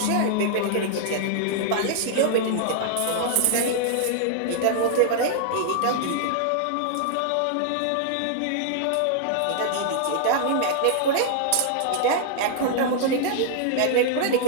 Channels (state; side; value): different; both; correlation -0.01